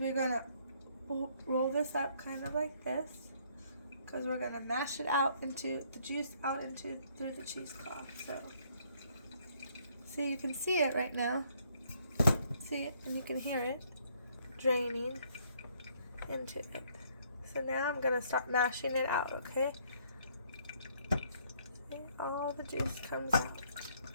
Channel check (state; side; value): inverted; both; correlation -0.66